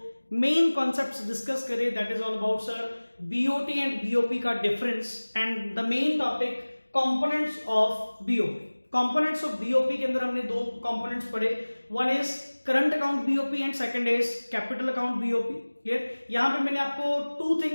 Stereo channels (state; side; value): inverted; both; correlation -1.00